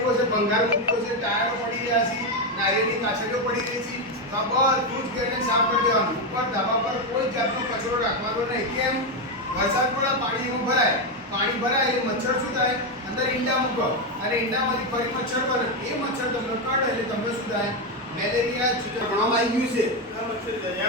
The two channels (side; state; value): both; normal; correlation 0.07